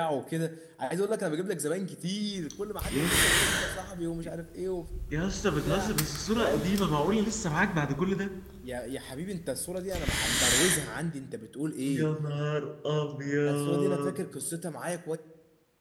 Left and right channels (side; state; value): both; identical; correlation 1.00